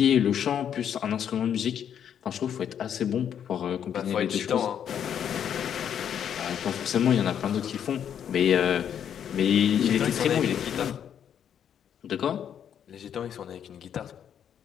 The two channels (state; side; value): quieter; right; 8.9 dB